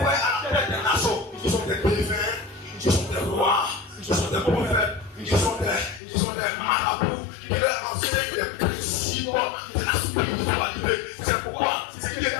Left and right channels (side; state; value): right; drops out; at 6.0 s